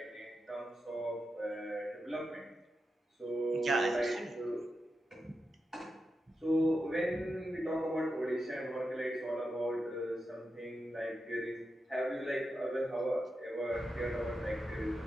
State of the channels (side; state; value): both; normal; correlation 0.88